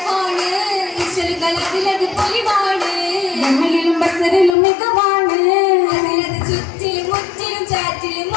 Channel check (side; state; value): right; drops out; at 4.5 s